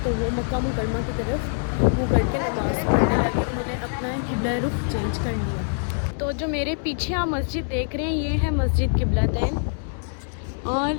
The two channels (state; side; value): silent; right; digital silence